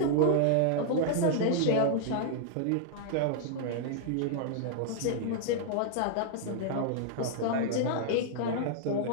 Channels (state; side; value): different; both; correlation -0.01